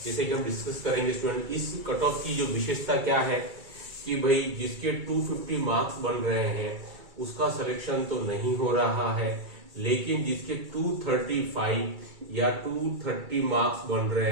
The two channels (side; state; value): left; late; 2.3 ms